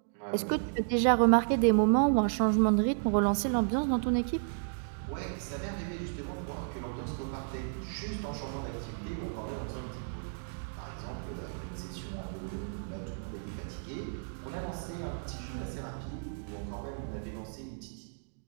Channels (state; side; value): silent; left; digital silence